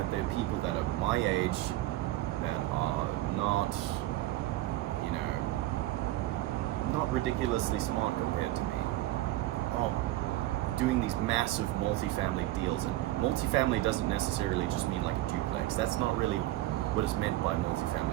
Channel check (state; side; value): quieter; left; 16.2 dB